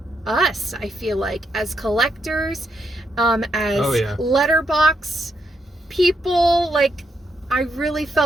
us, I feel like, as collectors, as Letterboxd people. Like, I really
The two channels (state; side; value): normal; both; correlation 0.79